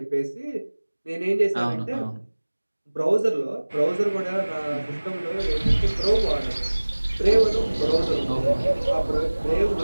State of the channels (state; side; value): inverted; both; correlation -1.00